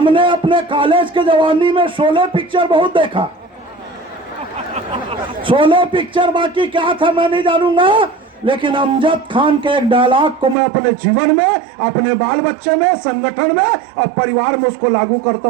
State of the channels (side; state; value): left; drops out; at 10.6 s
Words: अपने कॉलेज के जवानी में शोले पिक्चर बहुत देखा। शोले पिक्चर बाकी क्या था मैं नहीं जानूंगा, लेकिन अमजद खान के एक डायलॉग को मैं अपने जीवन में, अपने बाल बच्चे में, संगठन में और परिवार में उसको लागू करता